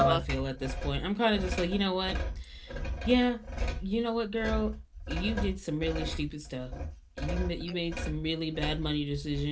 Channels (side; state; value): both; identical; correlation 1.00